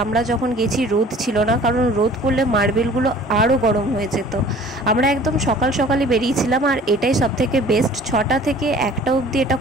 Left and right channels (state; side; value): normal; both; correlation 0.48